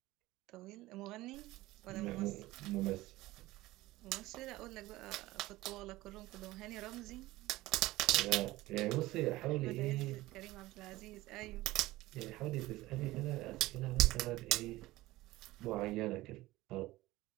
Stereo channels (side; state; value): left; quieter; 18.1 dB